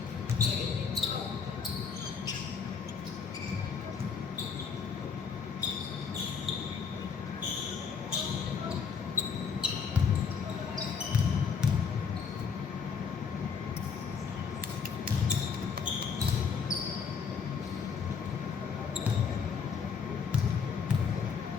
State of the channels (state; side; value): quieter; right; 6.1 dB